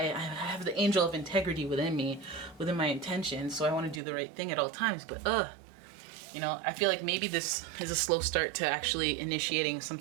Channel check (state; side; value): drops out; left; at 4.0 s